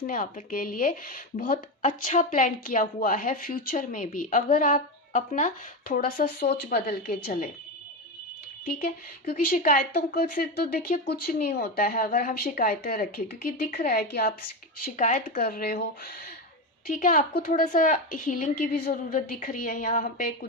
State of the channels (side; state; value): both; normal; correlation 0.16